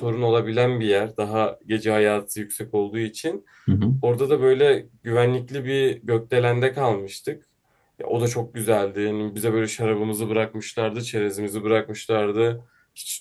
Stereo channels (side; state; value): both; identical; correlation 1.00